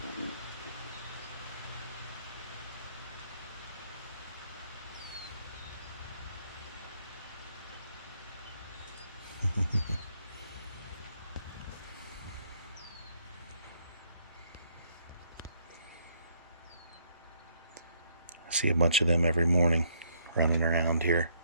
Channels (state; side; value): inverted; both; correlation -0.68